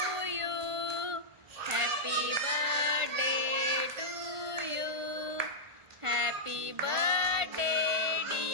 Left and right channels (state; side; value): late; left; 1.4 ms